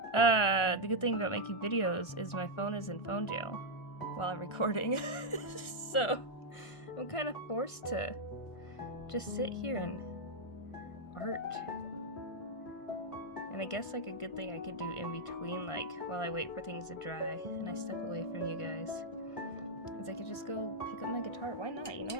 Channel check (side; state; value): right; late; 1.3 ms